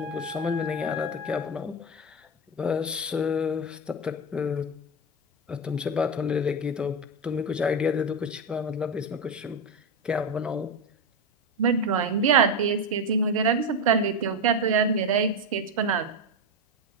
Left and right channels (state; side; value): normal; both; correlation 0.13